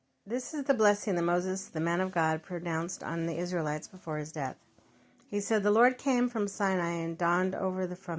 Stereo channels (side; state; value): both; identical; correlation 1.00